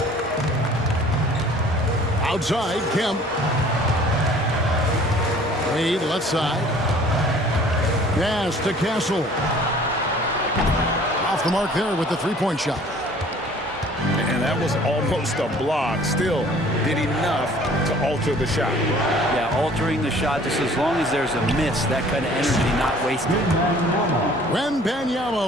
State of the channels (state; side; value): normal; both; correlation 0.52